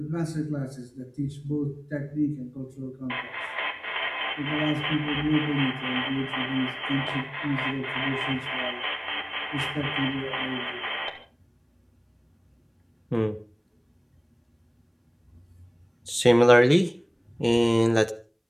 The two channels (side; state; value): both; identical; correlation 1.00